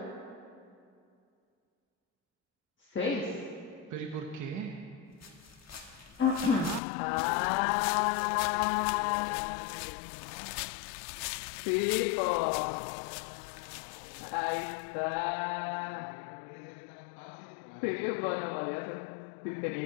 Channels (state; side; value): drops out; right; at 6.8 s